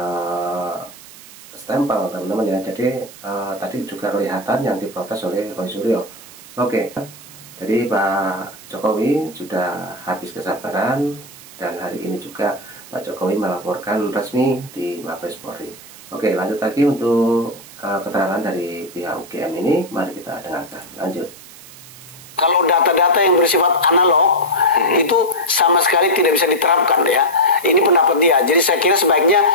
stempel, teman-teman ya. Jadi tadi juga kelihatan yang diprotes oleh Roy Suryo. Oke, jadi Pak Jokowi sudah habis kesabaran dan hari ini juga Pak Jokowi melaporkan resmi di Mabes Polri. Oke, lanjut lagi untuk keterangan dari pihak UGM ini, mari kita dengarkan. Lanjut. Kalau data-data yang bersifat analog itu sama sekali tidak bisa diterapkan ya. Ini pendapat dia. Jadi saya kira sebaiknya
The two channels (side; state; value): right; noise; hiss, 18 dB below the sound